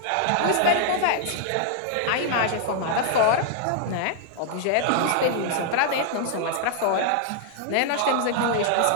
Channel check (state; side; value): different; both; correlation -0.01